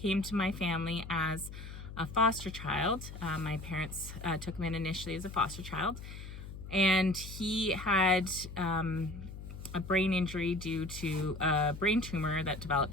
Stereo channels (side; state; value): left; noise; hum, 11 dB below the sound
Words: to my family as a foster child. My parents took him in initially as a foster child, and he had a brain injury due to a brain tumor that